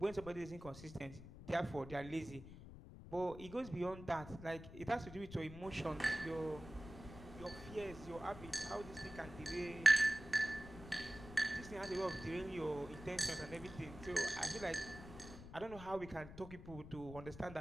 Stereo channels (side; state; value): left; noise; rumble, 13 dB below the sound